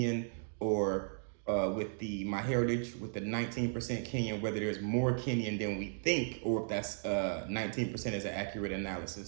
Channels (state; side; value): silent; left; digital silence